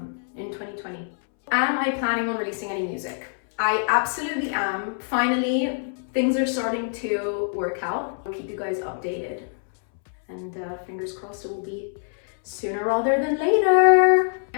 in 2020. Am I planning on releasing any music? I absolutely am. Finally, things are starting to work out. I'll keep you guys updated, and fingers crossed it will be sooner rather than later.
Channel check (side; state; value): right; silent; 62 dB below the other